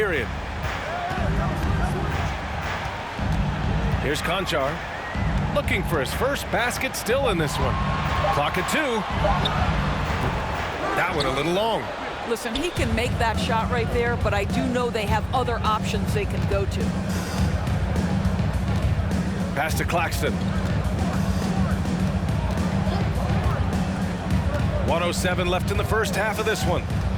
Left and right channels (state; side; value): identical; both; correlation 1.00